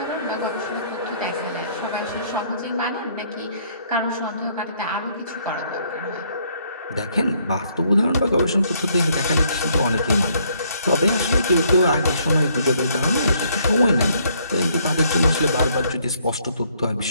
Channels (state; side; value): inverted; both; correlation -0.67